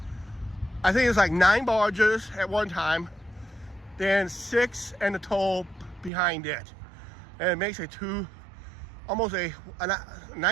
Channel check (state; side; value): drops out; left; at 6.1 s